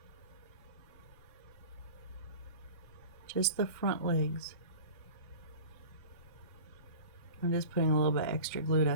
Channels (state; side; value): inverted; both; correlation -0.38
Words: Just the front legs. I'm just putting a little bit extra glue